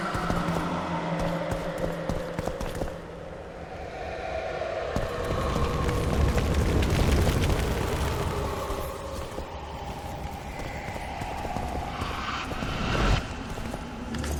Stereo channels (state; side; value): identical; both; correlation 1.00